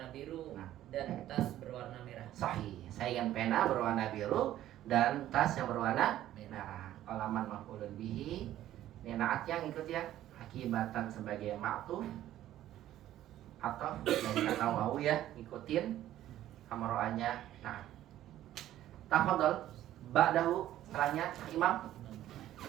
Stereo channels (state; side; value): quieter; left; 13.1 dB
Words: biru Nah. dan tas berwarna merah. Sahih. Saya ingin pena berwarna biru dan tas yang berwarna merah. Qalaman maf'ulun bihi. Ini naat yang ikut ya. Hakibatan sebagai ma'tuf atau dari kata wawu ya, ngikutin hamro'anya. Nah, tafadhol ba'dahu setelahnya Imam.